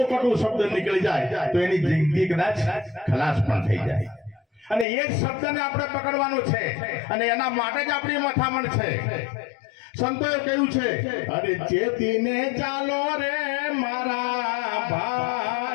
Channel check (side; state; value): right; drops out; at 4.9 s